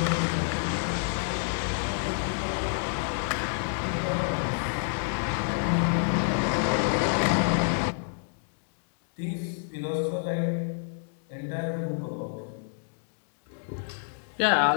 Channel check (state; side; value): silent; right; digital silence